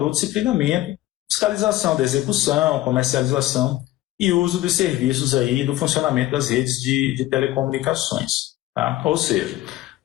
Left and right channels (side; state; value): right; quieter; 15.9 dB